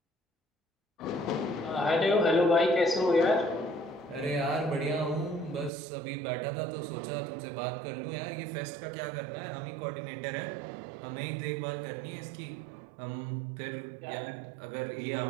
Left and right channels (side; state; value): left; drops out; at 5.7 s